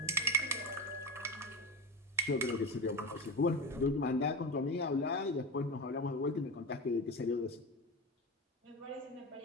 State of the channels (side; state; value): both; normal; correlation 0.22